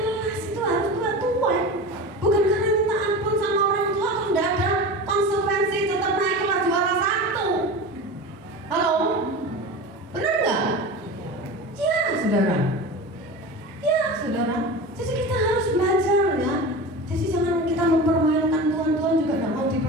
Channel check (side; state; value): both; normal; correlation 0.30